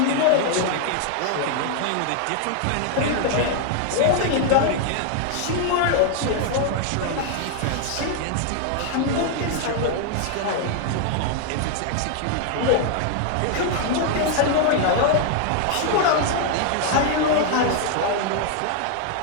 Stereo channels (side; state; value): both; different; correlation 0.00